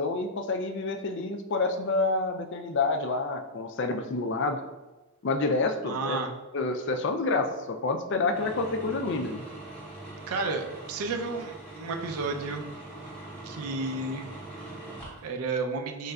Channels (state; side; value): normal; both; correlation -0.06